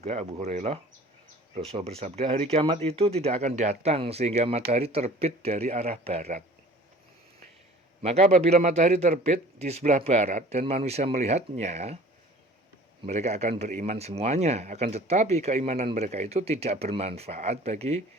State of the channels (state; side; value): normal; both; correlation 0.47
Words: Abu Hurairah, Rasul bersabda, hari kiamat itu tidak akan datang sehingga matahari terbit dari arah barat. Maka apabila matahari terbit di sebelah barat dan manusia melihatnya, mereka akan beriman semuanya. Akan tetapi keimanan mereka itu tidak bermanfaat bagi